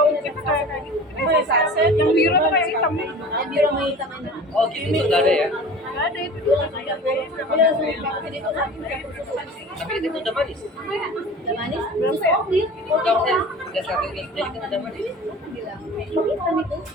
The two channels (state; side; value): normal; both; correlation 0.39